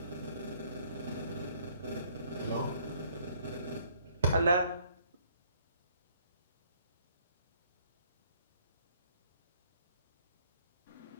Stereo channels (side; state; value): both; inverted; correlation -0.63